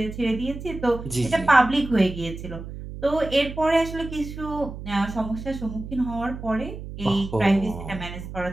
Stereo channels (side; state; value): right; noise; hum, 10 dB below the sound